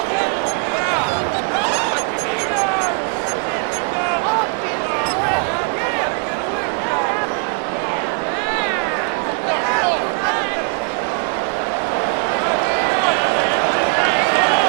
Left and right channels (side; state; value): left; quieter; 38.8 dB